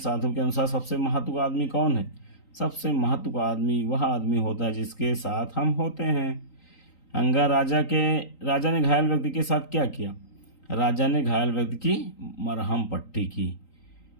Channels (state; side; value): late; right; 3.9 ms